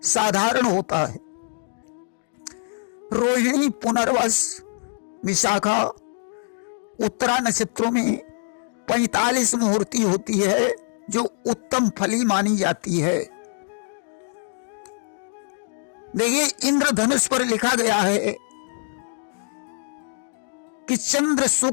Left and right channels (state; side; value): silent; right; digital silence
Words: साधारण होता है। रोहिणी, पुनर्वस, विशाखा, उत्तरा नक्षत्रों में 45 मुहूर्ती होती है, जो उत्तम फली मानी जाती है। देखिए, इंद्रधनुष पर लिखा गया है कि चंद्र